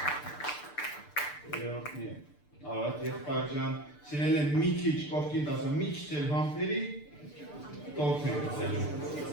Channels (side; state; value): right; late; 6.8 ms